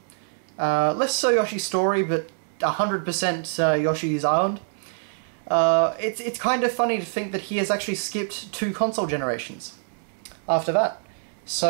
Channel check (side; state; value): left; silent; 62 dB below the other